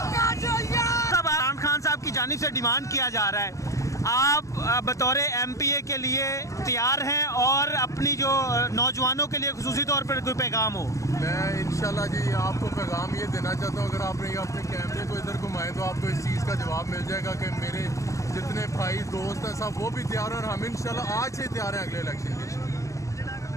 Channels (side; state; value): right; late; 0.15 ms